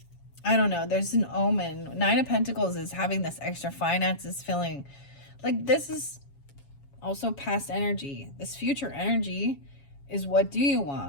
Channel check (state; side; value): late; right; 7.2 ms